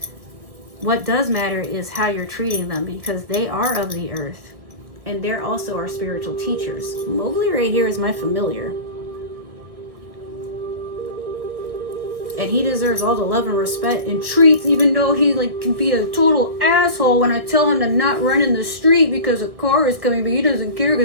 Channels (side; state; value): left; late; 1.5 ms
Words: What does matter is how you're treating them, because they are of the earth and they're also our spiritual teachers. Mowgli right here is my familiar. And he deserves all the love and respect and treats, even though he can be a total asshole when I tell him to not run in the street because a car is coming, but he doesn't care